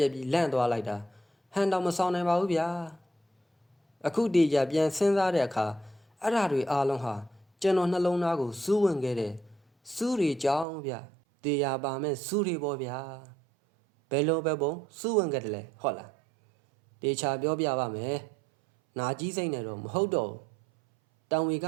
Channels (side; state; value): left; drops out; at 10.7 s